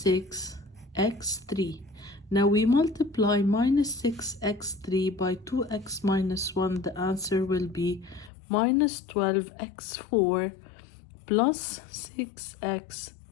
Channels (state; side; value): drops out; right; at 8.3 s